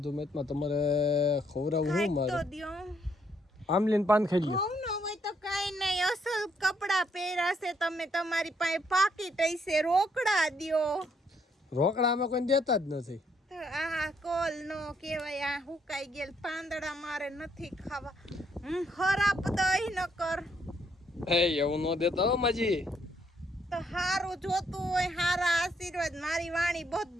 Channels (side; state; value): both; normal; correlation 0.72